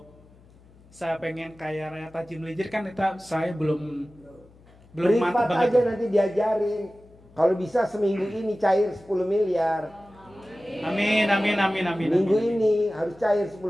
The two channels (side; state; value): left; noise; hum, 27 dB below the sound